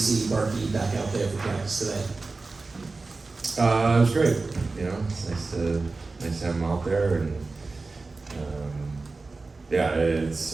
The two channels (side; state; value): left; quieter; 3.7 dB